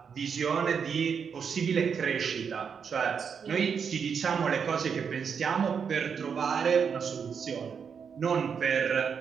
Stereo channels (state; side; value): quieter; left; 6.6 dB